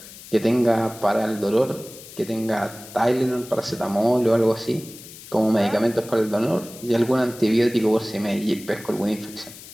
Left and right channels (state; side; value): noise; left; hiss, 17 dB below the sound